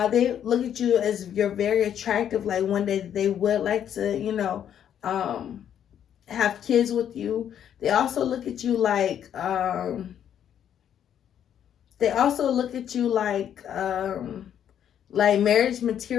They look at you as you're very attractive. Like one day they would like to, have kids with you. They also look at you like like marriage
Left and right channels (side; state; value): right; quieter; 9.6 dB